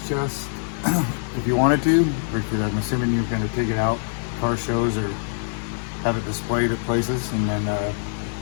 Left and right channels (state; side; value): silent; right; digital silence